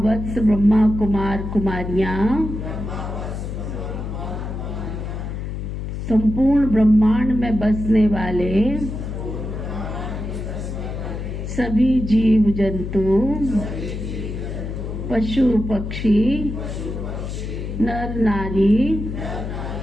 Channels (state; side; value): noise; left; hum, 5 dB below the sound